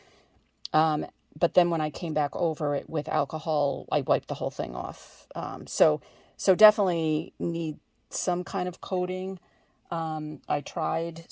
But then when I came back over it with alcohol, I wiped the whole thing off. So definitely need some kind of coating. I tried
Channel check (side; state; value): both; identical; correlation 1.00